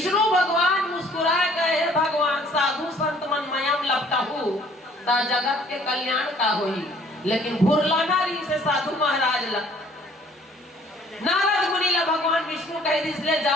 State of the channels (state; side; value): normal; both; correlation 0.57